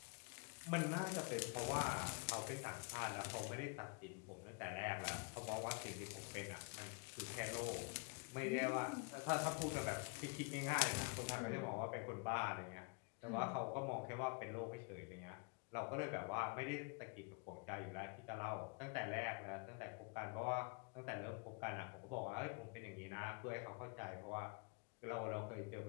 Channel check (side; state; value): right; quieter; 31.9 dB